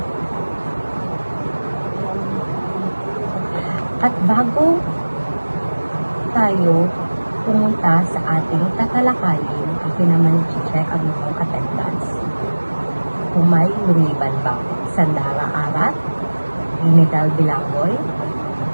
At bago tayo pumunta sa ating tatalakayin, akin naman i-check ang inyong attendance. Kung may lumiban ba, Sandara Arat, Ginidal Bilangoy,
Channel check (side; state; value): both; inverted; correlation -1.00